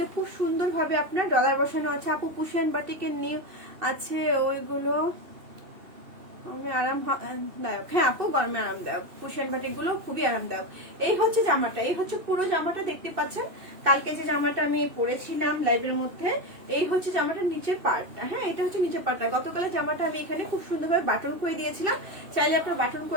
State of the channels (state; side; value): late; left; 2.6 ms